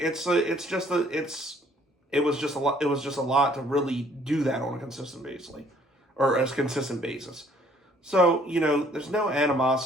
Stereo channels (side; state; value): both; normal; correlation 0.61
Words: was just a lot to really do that on a consistent basis. So, there's no